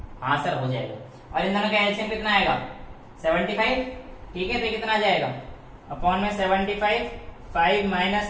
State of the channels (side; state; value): both; identical; correlation 1.00